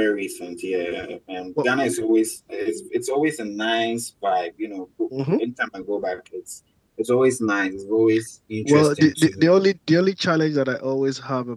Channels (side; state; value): both; identical; correlation 1.00